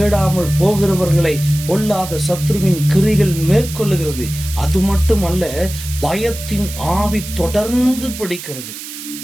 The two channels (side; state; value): right; noise; hiss, 11 dB below the sound